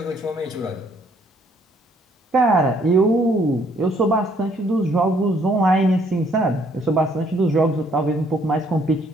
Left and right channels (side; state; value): both; normal; correlation 0.66